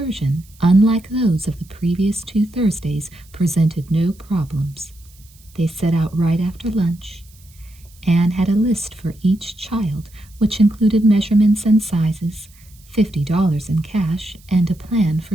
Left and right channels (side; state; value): right; noise; hiss, 27 dB below the sound